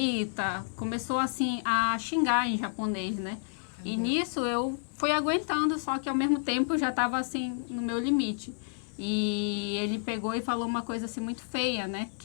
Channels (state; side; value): silent; right; 58 dB below the other